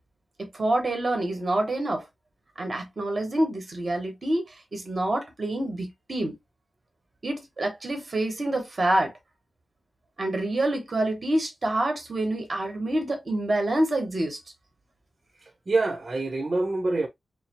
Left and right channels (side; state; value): both; normal; correlation 0.94